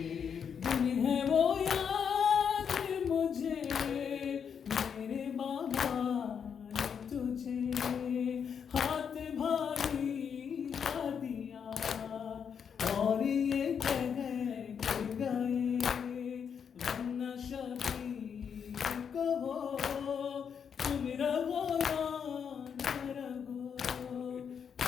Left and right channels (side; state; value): right; quieter; 7.2 dB